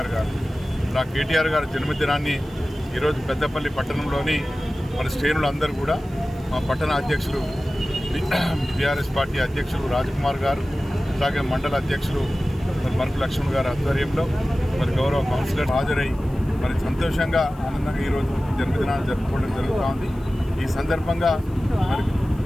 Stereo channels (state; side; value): noise; right; hiss, 28 dB below the sound